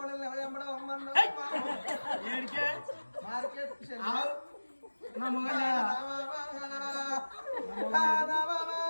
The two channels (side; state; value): both; inverted; correlation -1.00